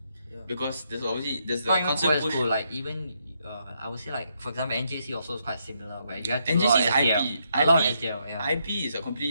Because there's the Not even constant co-ed push. school, like even I would say like for example NJC also is quite similar where you have to NJC do a lot is of IP. SDL. A lot of SDL, yeah. IP is a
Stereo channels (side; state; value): both; inverted; correlation -0.77